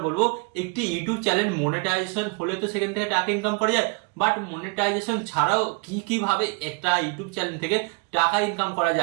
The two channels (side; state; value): left; quieter; 32.5 dB